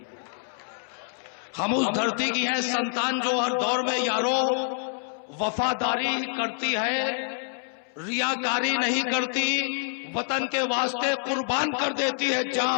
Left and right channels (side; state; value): right; silent; 60 dB below the other